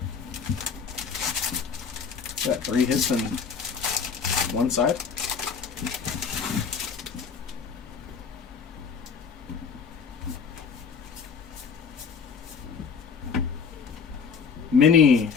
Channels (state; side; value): quieter; right; 6.0 dB